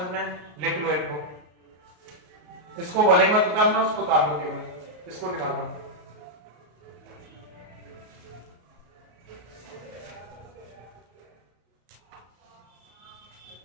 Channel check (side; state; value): left; late; 33 ms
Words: में, लिख लो इनको, इसको भले मत उतारना, उसको उतार लो, केवल इसको निकाल दो।